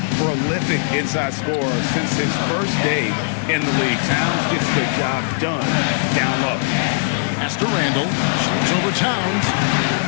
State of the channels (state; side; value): silent; right; digital silence